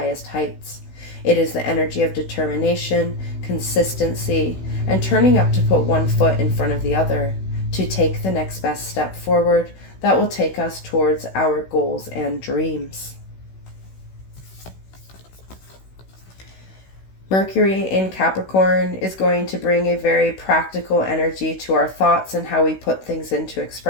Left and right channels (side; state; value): right; late; 16 ms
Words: heights. It is the energy of determination, consistency, and turning up to put one foot in front of the other, to take the next best step forward that will take us towards our goals and dreams. Mercury in Capricorn is going to bring a very practical energy to our thoughts and how we put things into